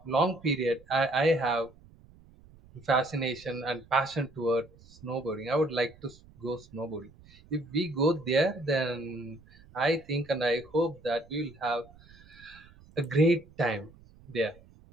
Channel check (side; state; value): right; noise; rumble, 25 dB below the sound